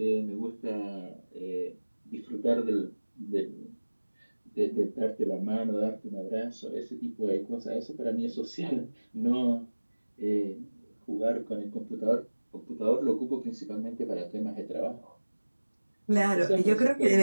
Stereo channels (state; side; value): inverted; both; correlation -1.00